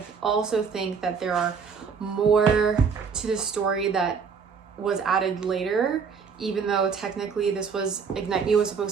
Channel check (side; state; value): left; quieter; 6.0 dB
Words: also think that there are more to the story that was added later, even though technically this was Ignite Me was